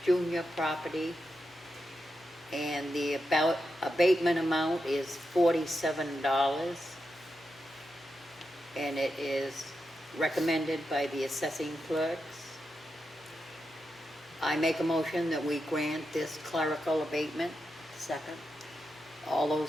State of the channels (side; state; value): both; normal; correlation 0.87